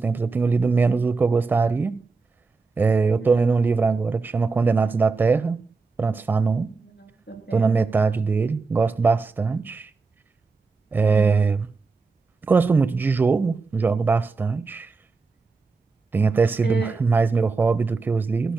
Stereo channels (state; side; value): quieter; left; 4.3 dB